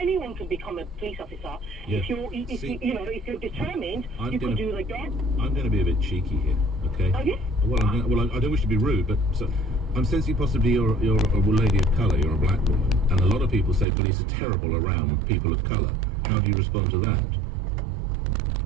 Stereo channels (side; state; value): left; drops out; at 13.9 s